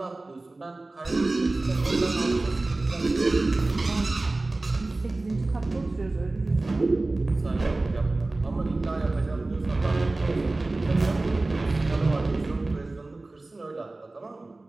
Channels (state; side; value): quieter; left; 3.1 dB